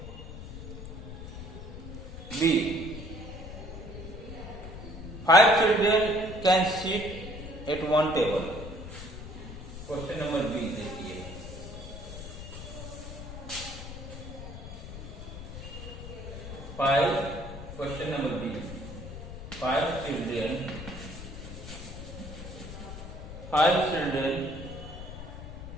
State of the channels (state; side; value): noise; left; rumble, 10 dB below the sound